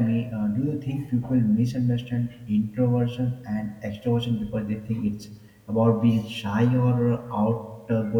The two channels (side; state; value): both; identical; correlation 1.00